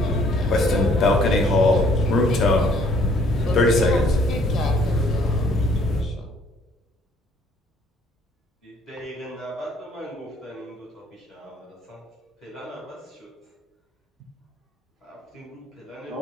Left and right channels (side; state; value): both; normal; correlation 0.61